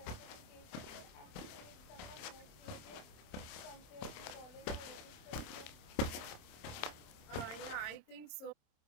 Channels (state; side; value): late; right; 27 ms